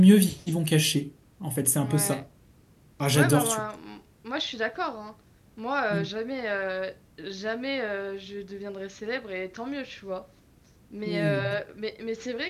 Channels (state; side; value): identical; both; correlation 1.00